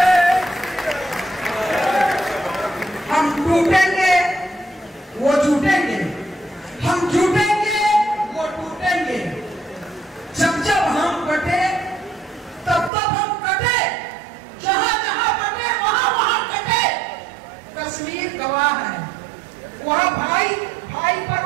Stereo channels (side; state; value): left; drops out; at 12.9 s